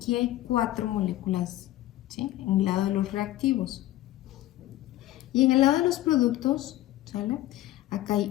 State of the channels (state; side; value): quieter; right; 15.3 dB